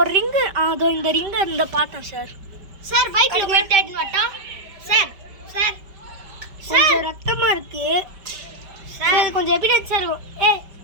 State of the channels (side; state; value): left; late; 5.2 ms